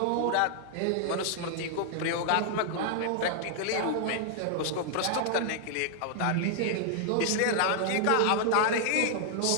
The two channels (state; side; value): different; both; correlation -0.01